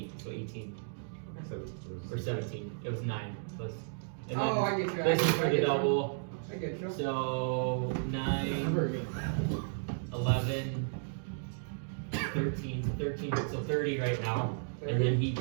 so 18 or 17. It was 9 plus. And Oh, I get you. This is for the double. I get you. So 9, 11, 13, 13, so 30 right now. And then he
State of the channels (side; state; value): left; silent; digital silence